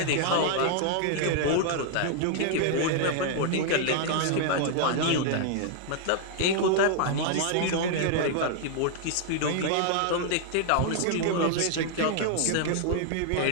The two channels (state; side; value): different; both; correlation 0.00